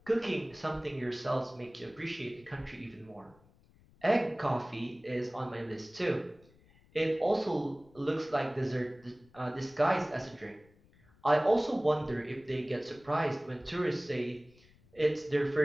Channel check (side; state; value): left; noise; rumble, 28 dB below the sound